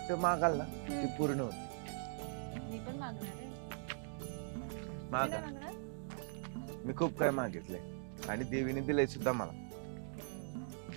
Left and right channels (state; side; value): silent; left; digital silence